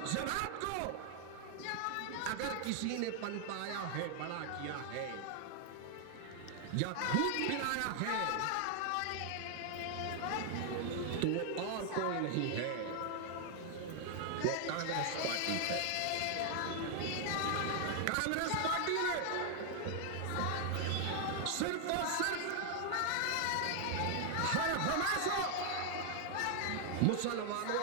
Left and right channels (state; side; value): different; both; correlation 0.00